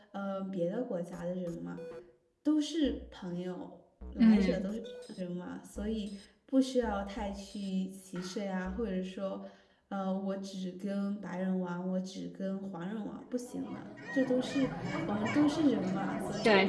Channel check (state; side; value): identical; both; correlation 1.00